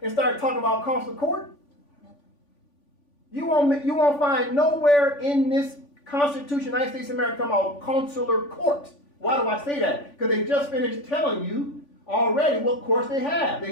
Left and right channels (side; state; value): right; late; 3.5 ms